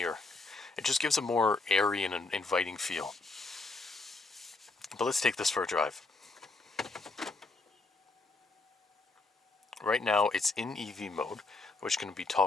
It just gives a more airy and an inviting feel. But let's take this for a drive. Right now it's in EV mode, which can be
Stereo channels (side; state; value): right; quieter; 3.5 dB